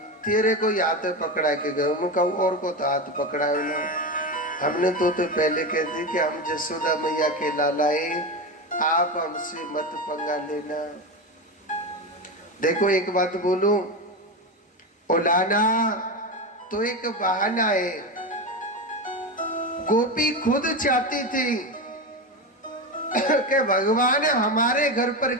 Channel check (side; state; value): both; normal; correlation 0.18